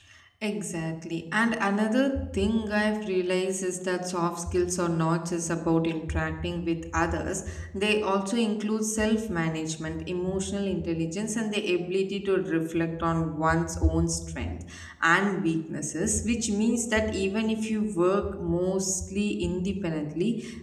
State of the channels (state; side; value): identical; both; correlation 1.00